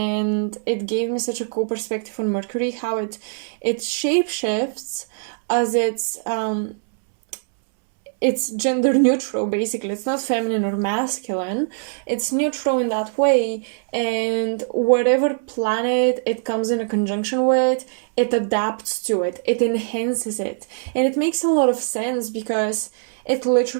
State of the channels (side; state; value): left; silent; 64 dB below the other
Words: it gave me such a cool perspective on Mercury, how it shapeshifts as it's gender neutral. Basically, it's not feminine or masculine, it's neutral in that way, and whatever planet it comes in a conjunction with, it adapts to it, it enhances it, and it makes a lot of sense because it